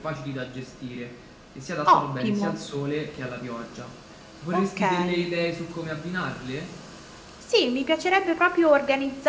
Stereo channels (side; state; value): both; identical; correlation 1.00